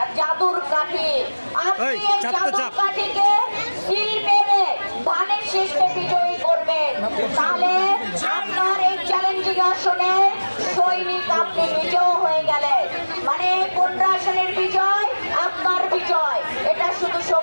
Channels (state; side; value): inverted; both; correlation -1.00